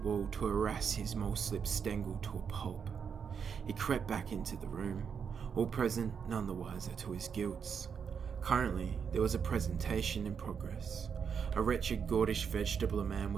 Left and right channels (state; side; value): quieter; left; 6.8 dB